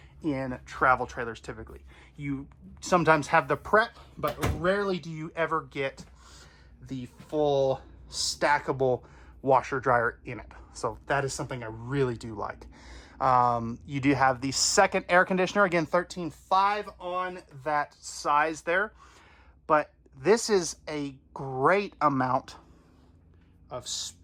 in travel trailers typically. You sometimes have the prep, but rarely do you ever get the full stackable washer dryer in it. So that is something I really do like. You do have the second air conditioner, again 13.5 on that size there, but this is a great amount of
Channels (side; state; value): both; identical; correlation 1.00